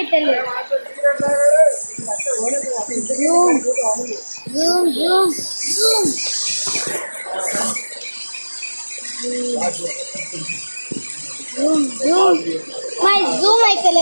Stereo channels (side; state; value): both; inverted; correlation -1.00